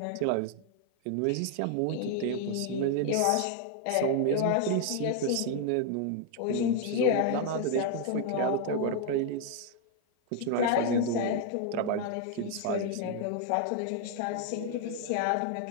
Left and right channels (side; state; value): both; different; correlation 0.00